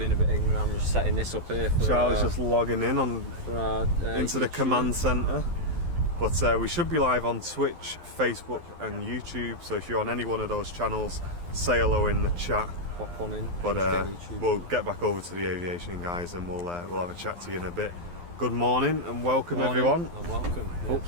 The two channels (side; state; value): left; late; 12 ms